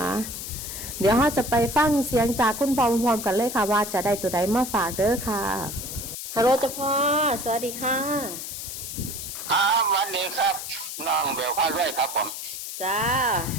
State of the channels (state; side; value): noise; left; hiss, 7 dB below the sound